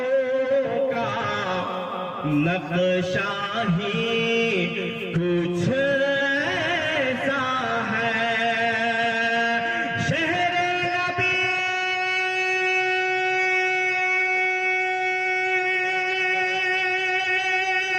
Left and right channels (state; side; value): identical; both; correlation 1.00